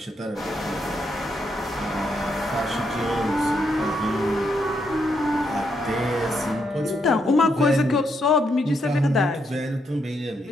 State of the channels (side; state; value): both; normal; correlation 0.78